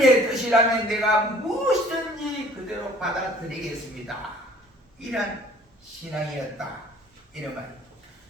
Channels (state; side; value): normal; both; correlation 0.54